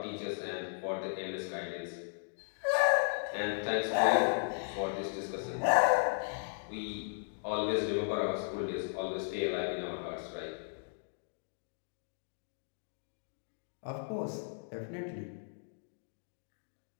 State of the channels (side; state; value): right; silent; digital silence